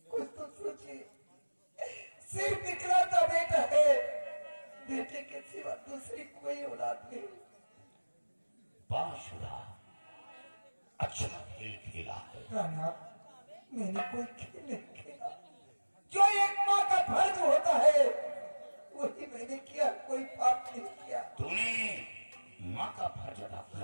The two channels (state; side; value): inverted; both; correlation -1.00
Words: कुछ तो सोचिए। सिर्फ इकलौता बेटा है, बेटे के सिवा दूसरी कोई औलाद नहीं। बाशुरा अच्छा खेल खेला है। राना, मैंने कोई खेल नहीं खेला। जो एक माँ का फर्ज होता है वही मैंने किया, कोई पाप नहीं किया। तूने माँ का फर्ज अदा